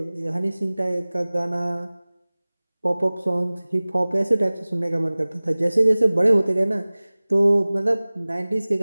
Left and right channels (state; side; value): inverted; both; correlation -0.99